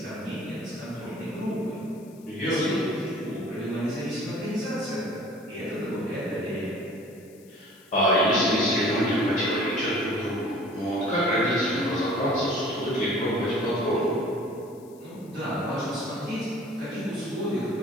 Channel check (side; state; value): left; noise; hiss, 27 dB below the sound